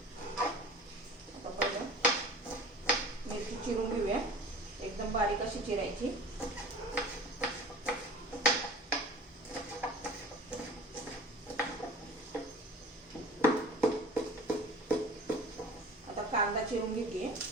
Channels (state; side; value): normal; both; correlation 0.42